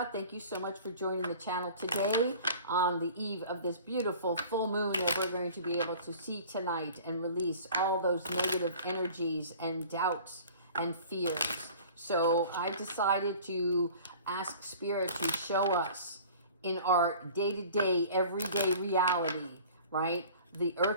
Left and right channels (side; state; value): both; inverted; correlation -0.45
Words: Thank you so much for joining the channel today on the eve of this beautiful full moon that we're going to be able to see tonight and release all those negative energies and doubts and fears. So I decided to ask Spirit to show us in our day-to-day, everyday reality, right? The